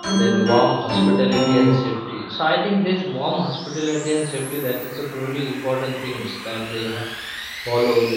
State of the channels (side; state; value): both; identical; correlation 1.00